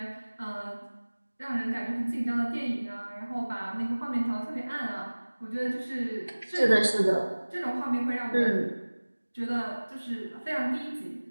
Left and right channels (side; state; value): both; inverted; correlation -1.00